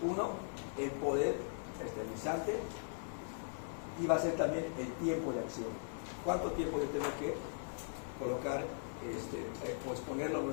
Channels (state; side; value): silent; right; 51 dB below the other